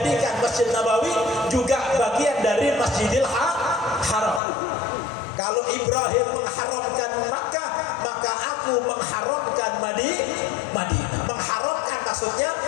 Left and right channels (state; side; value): drops out; right; at 4.4 s